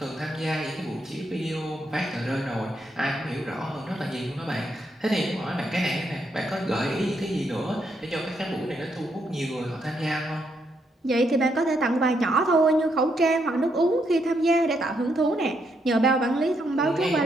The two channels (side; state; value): both; normal; correlation 0.77